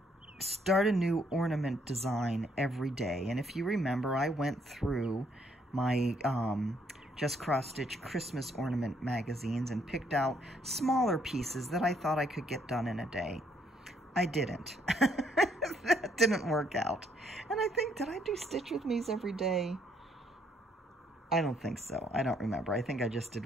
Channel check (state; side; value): normal; both; correlation 0.69